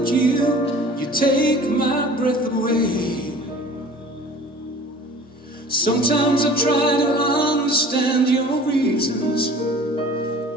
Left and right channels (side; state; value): both; normal; correlation 0.45